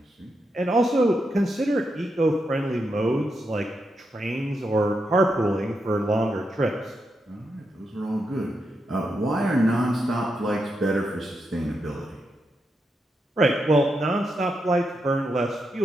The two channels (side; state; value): both; normal; correlation 0.84